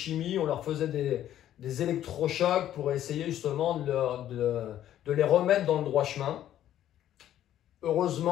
on leur faisait des électrochocs pour essayer justement de les remettre dans le droit chemin.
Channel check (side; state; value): right; quieter; 11.8 dB